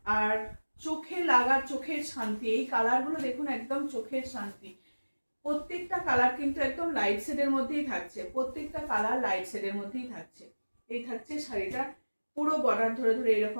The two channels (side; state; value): both; inverted; correlation -1.00